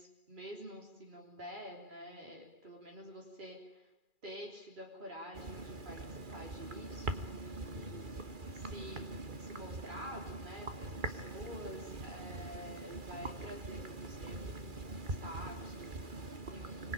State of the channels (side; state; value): left; late; 2.4 ms